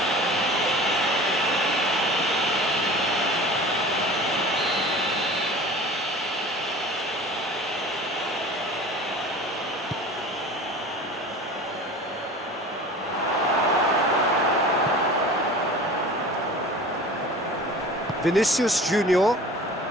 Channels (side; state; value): both; normal; correlation 0.40